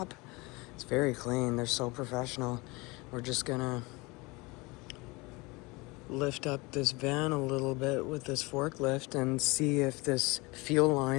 It's very clean. They're so professional. We're just gonna lift up this van a little bit with this forklift and see if this fuel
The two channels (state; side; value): quieter; right; 24.9 dB